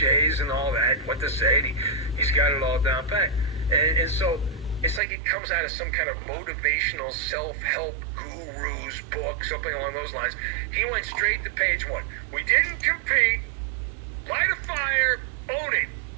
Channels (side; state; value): left; drops out; at 5.0 s